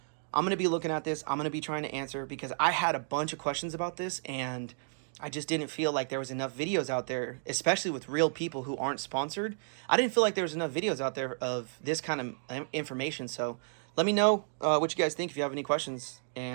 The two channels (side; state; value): left; silent; digital silence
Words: I'm going to be looking at this. I'm going to be trying to answer, because I had a bunch of questions about this, and I just didn't feel like there was enough videos out there, especially with real people who aren't sponsored. I didn't feel like there was enough videos out there of this kind of information. So let me know what you guys think if you have any questions,